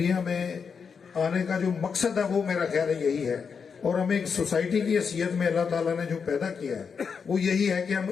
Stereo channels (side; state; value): right; quieter; 6.0 dB